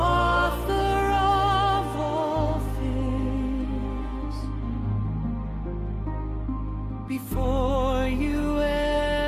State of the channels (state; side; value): identical; both; correlation 1.00